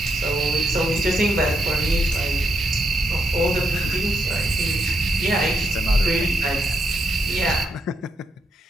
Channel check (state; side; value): normal; both; correlation 0.81